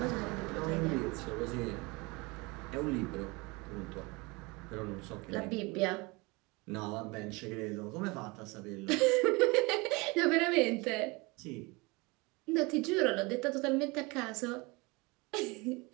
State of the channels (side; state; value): left; quieter; 25.8 dB